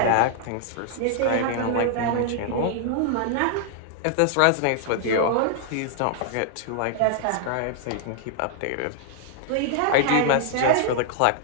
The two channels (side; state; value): both; different; correlation -0.01